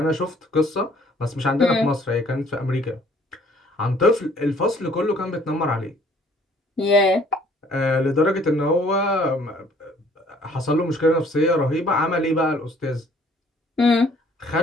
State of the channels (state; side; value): normal; both; correlation 0.58